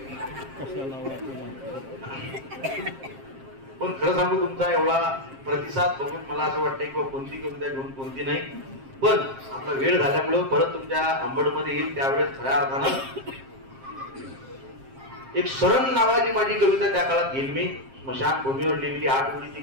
पण खरं सांगू, तुमचा एवढा प्रतिसाद बघून मला असं वाटतंय की कोणती कविता घेऊन कोणती नाही. पण आपला वेळ झाल्यामुळं परत तुमच्या अंबडमध्ये येईल. त्यावेळेस खऱ्या अर्थानं एक शरण नावाची माझी कविता त्या काळात घेईल मी. स्मशानभूमीवर लिहिलेली 8 ओळीची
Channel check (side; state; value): left; late; 7.5 ms